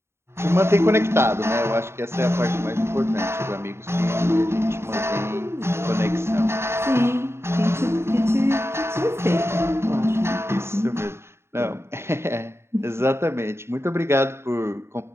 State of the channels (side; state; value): left; late; 0.12 ms